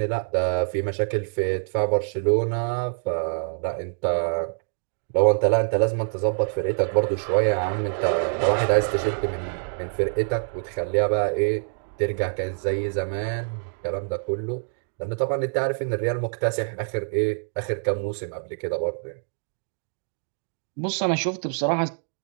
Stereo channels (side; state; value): left; silent; digital silence